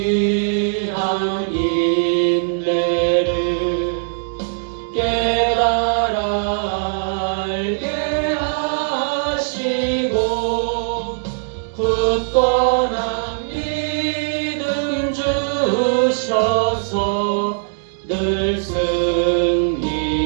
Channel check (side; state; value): left; silent; digital silence